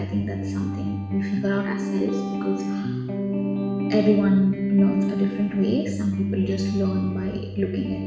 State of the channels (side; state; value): both; identical; correlation 1.00